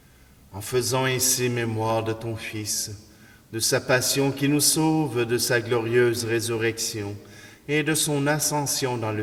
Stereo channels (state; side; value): identical; both; correlation 1.00